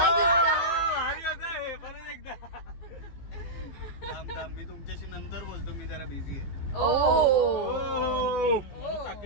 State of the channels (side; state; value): right; late; 15 ms